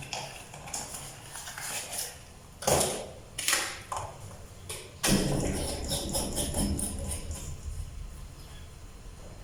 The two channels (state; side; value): identical; both; correlation 1.00